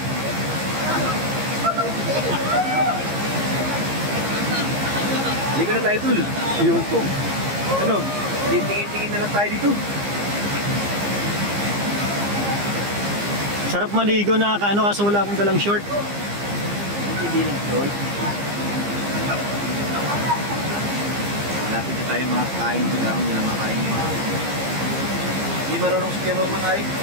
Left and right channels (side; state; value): left; late; 15 ms